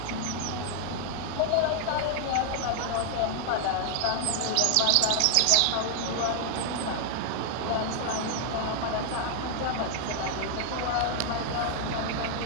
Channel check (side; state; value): both; different; correlation 0.00